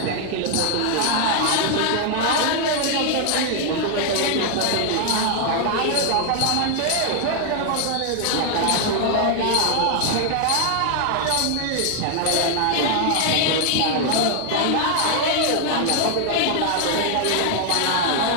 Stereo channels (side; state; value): both; different; correlation 0.00